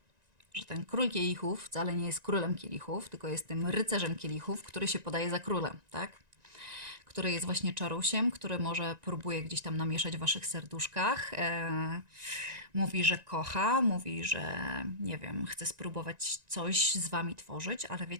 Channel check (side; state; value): left; late; 1.9 ms